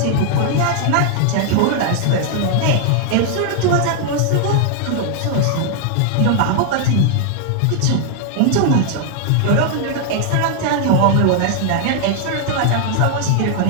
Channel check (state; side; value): different; both; correlation 0.00